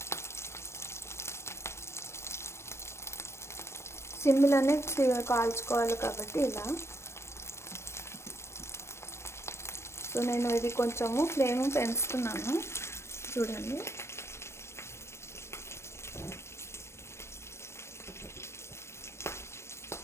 సిమ్లోనే కాల్చుకోవాలి కాబట్టి ఇలా. నేను ఇది కొంచెము ఫ్లేమ్ పెంచుతున్నాను, చూడండి.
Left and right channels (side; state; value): right; late; 0.13 ms